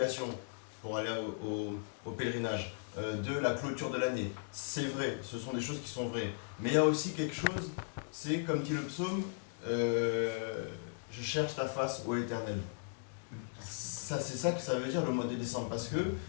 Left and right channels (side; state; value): right; silent; digital silence